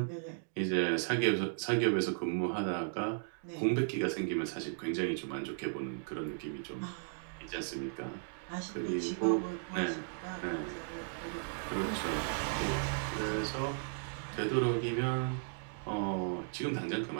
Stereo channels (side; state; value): left; silent; digital silence